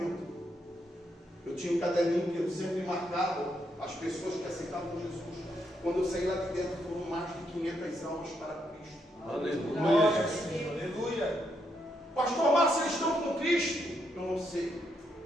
Eu tinha um caderninho que eu sempre marcava as pessoas que aceitavam Jesus. Quando eu saí lá de dentro, foram mais de 500 almas para Cristo. Aleluia. Aleluia. Pastor Márcio, eles estão com Cristo? Eu não sei.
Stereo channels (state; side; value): normal; both; correlation 0.78